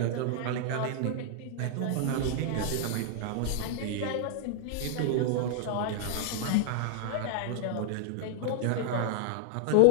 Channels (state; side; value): different; both; correlation 0.00